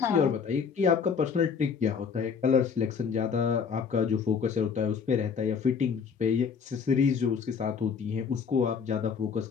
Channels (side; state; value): right; quieter; 6.2 dB